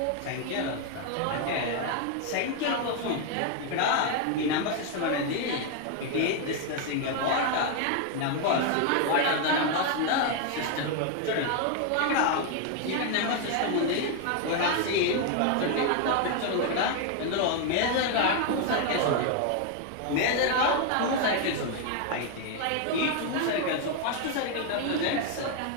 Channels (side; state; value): both; different; correlation 0.01